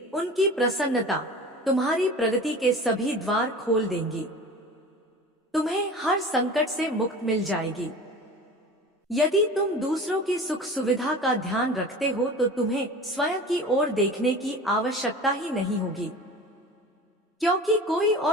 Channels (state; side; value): normal; both; correlation 0.37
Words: उनकी प्रसन्नता तुम्हारी प्रगति के सभी द्वार खोल देंगी। तुम्हें हर संकट से मुक्त मिल जाएगी। यदि तुम दूसरों की सुख सुविधा का ध्यान रखते हो तो तुम्हें स्वयं की ओर देखने की आवश्यकता ही नहीं होगी, क्योंकि कोई